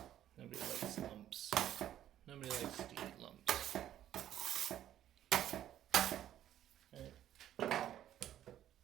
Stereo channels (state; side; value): quieter; left; 11.7 dB